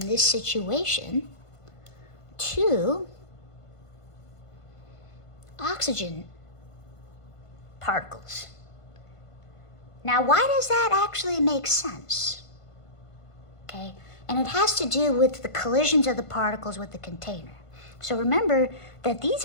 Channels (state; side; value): late; right; 1.5 ms